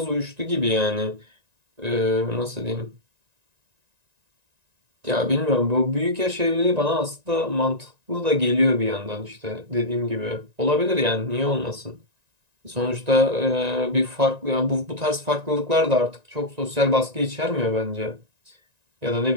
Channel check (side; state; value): left; late; 1.9 ms